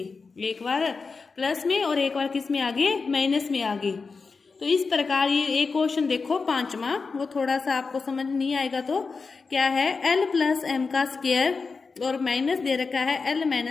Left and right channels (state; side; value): quieter; right; 4.6 dB